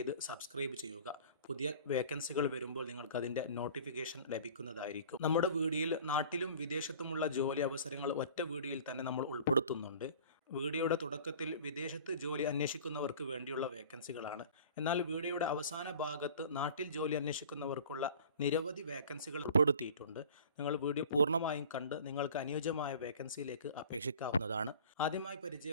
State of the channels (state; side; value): inverted; both; correlation -0.45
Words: സബ്സ്ക്രൈബ് ചെയ്യുക. പുതിയ വേക്കൻസികൾ വരുമ്പോൾ നിങ്ങൾക്ക് അതിൻ്റെ നോട്ടിഫിക്കേഷൻ ലഭിക്കുന്നതായിരിക്കും. നമ്മുടെ വീഡിയോയിൽ നാട്ടിലും വിദേശത്തുമുള്ള ജോലി അവസരങ്ങൾ ഒറ്റ വീഡിയോയിൽ തന്നെ നമ്മൾ ഉൾപ്പെടുത്തുന്നുണ്ട്. വീഡിയോയുടെ തുടക്കത്തിൽ വിദേശത്ത് ജോലി അന്വേഷിക്കുന്നവർക്ക് വേണ്ടിയുള്ള വേക്കൻസികളാണ്. എന്നാൽ വീഡിയോയുടെ അവസാന ഭാഗത്ത് നാട്ടിൽ ജോലി അന്വേഷിക്കുന്നവർക്കുള്ള നിരവധി വേക്കൻസികൾ ഉൾപ്പെടുത്തിയിട്ടുണ്ട്. നിങ്ങൾ വീഡിയോ പൂർണ്ണമായും കണ്ട് നിങ്ങൾക്ക് അനുയോജ്യമായ വേക്കൻസിയിലേക്ക് അപേക്ഷിക്കാവുന്നതാണ്. ആദ്യമായി